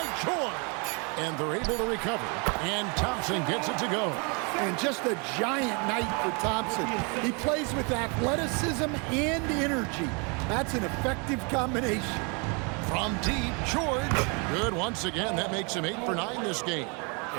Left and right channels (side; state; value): left; quieter; 33.3 dB